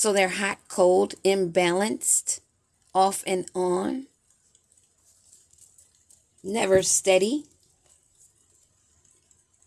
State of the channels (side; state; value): both; identical; correlation 1.00